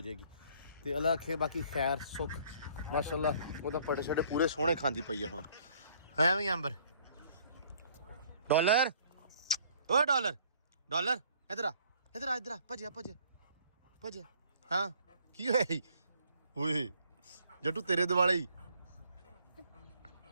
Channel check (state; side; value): inverted; both; correlation -0.60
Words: ਜਾਏਗੀ ਤੇ ਅੱਲਾ ਆਖੇ ਬਾਕੀ ਖੈਰ ਸੁੱਖ ਮਾਸ਼ਾਅੱਲਾ ਉਹਦਾ ਪੜੇ ਛੜੇ ਪੂਰੇ ਸੋਹਣੇ ਖਾਂਦੀ ਪਈ ਆ ਹੁਣ ਹੈ ਵੀ ਅੰਬਰ ਡਾਲਰ ਓ ਡਾਲਰ ਡਾਲਰ ਇਧਰ ਆ ਭੱਜਿਆ ਹਾਂ ਕੀ ਹੋਇਆ ਜੀ ਓਏ ਜੱਟੂ ਤੇਰੇ ਦਿਵਾਲੇ ਹੀ